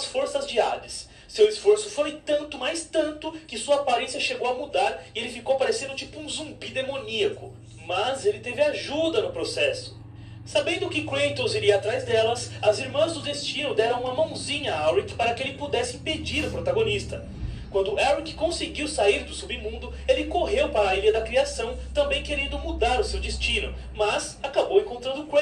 forças de Hades. Seu esforço foi tanto, mas tanto, que sua aparência chegou a mudar e ele ficou parecendo tipo um zumbi demoníaco. Mas ele teve ajuda no processo. Sabendo que Kratos iria atrás delas, as Irmãs do Destino deram uma mãozinha a Alric para que ele pudesse impedir o protagonista. Quando Alric conseguiu sair do submundo, ele correu para a Ilha da Criação, também querendo mudar o seu destino, mas acabou encontrando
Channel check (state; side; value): identical; both; correlation 1.00